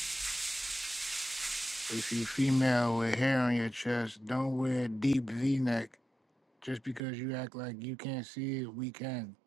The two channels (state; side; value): drops out; left; at 7.0 s